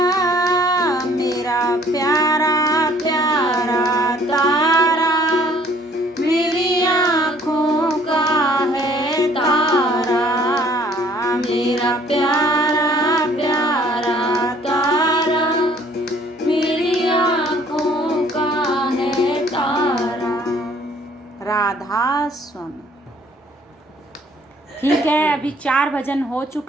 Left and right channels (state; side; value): normal; both; correlation 0.58